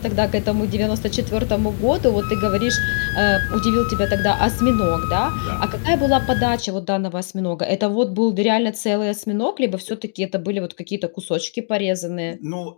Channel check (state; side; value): silent; right; digital silence